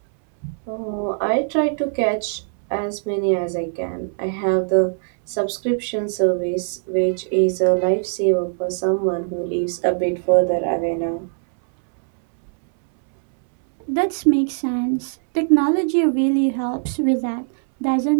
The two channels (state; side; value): silent; left; 65 dB below the other